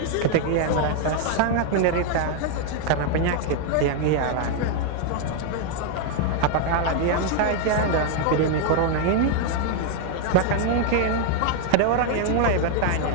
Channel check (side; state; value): both; different; correlation 0.00